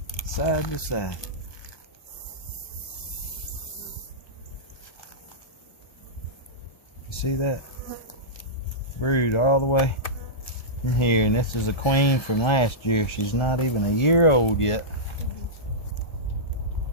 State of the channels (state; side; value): late; right; 1.3 ms